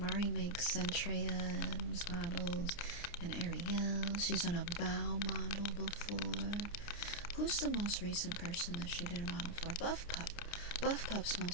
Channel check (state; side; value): late; right; 29 ms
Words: makes Centrea's models and Ariel. She's on a Bow model before. Who's the most recent person that she did a model for? Buff Pup. Buff Pup's